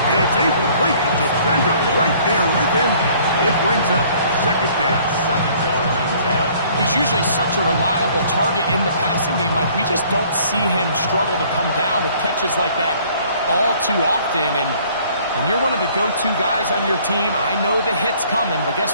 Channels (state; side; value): inverted; both; correlation -0.57